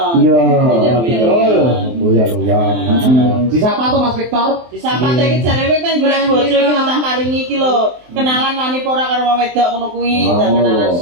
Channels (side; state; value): left; late; 23 ms